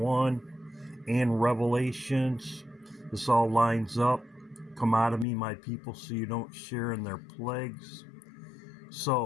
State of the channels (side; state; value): right; drops out; at 5.2 s